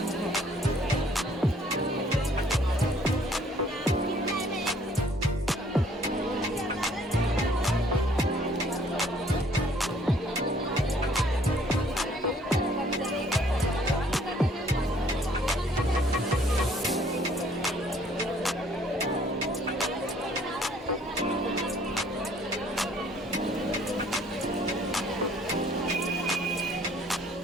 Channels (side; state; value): both; normal; correlation 0.60